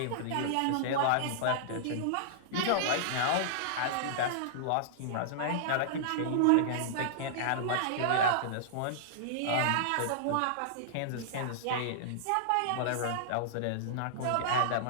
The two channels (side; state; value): both; different; correlation -0.01